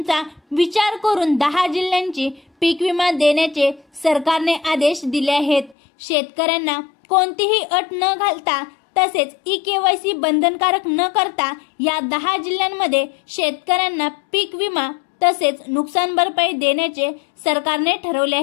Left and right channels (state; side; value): drops out; right; at 5.8 s